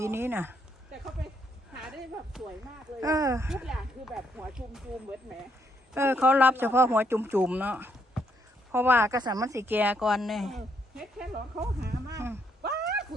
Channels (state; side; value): normal; both; correlation 0.73